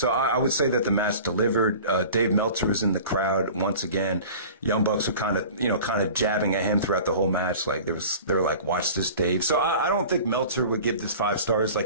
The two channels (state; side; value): inverted; both; correlation -0.41